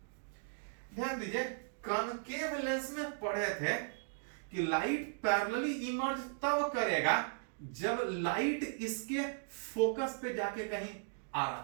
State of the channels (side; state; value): left; silent; digital silence